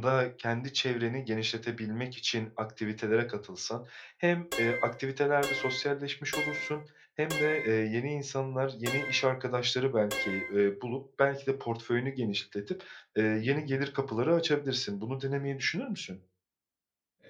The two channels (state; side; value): identical; both; correlation 1.00